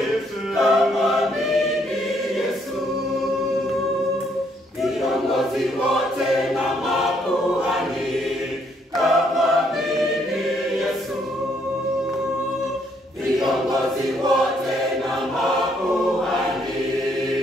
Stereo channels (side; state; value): both; normal; correlation 0.70